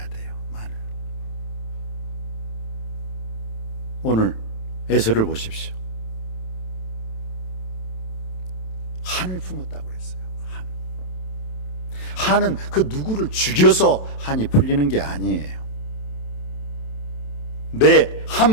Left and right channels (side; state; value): right; late; 27 ms